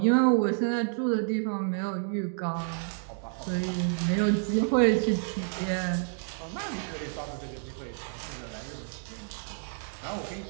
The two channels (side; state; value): left; silent; digital silence